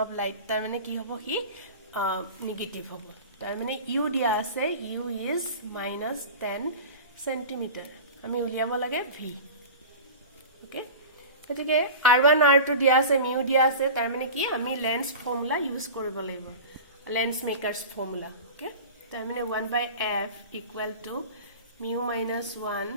of light তাৰ মানে কি হ'ব হি নেগেটিভ হ'ব তাৰ মানে u দিয়া আছে u is -10 cm আমি উলিয়াব লাগে v ওকে গতিকে r1 r2 দিয়া আছে mu দিয়া আছে তাৰ মানে কি আমি লেন্স ফৰ্মুলা ইউজ কৰিব লাগিব লেন্স মেকারস ফর্মুলা ওকে তার মানে 1/f equal to mu minus 1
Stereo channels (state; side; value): inverted; both; correlation -0.34